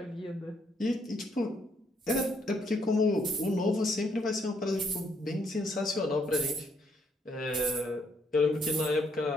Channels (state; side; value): normal; both; correlation 0.72